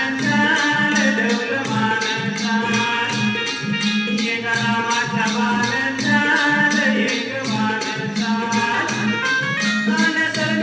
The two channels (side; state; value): both; identical; correlation 1.00